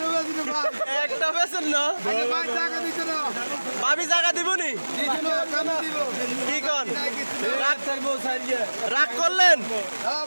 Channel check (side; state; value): both; inverted; correlation -1.00